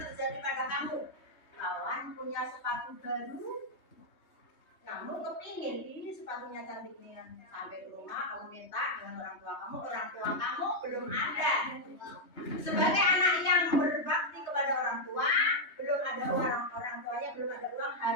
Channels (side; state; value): right; late; 3.2 ms